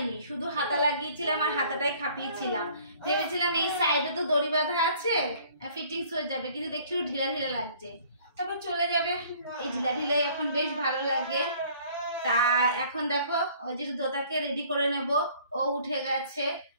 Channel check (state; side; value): inverted; both; correlation -0.55